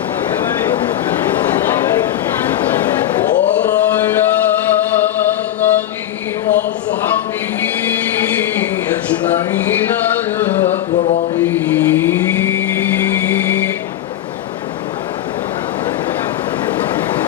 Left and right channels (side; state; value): right; quieter; 12.3 dB